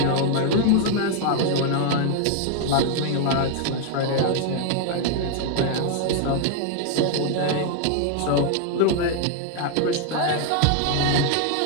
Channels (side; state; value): both; different; correlation 0.00